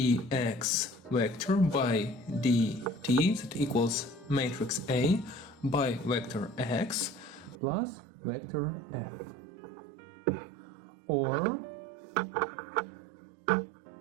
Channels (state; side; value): drops out; left; at 7.6 s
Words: vector by dt that equals matrix A by vector x plus vector f. Or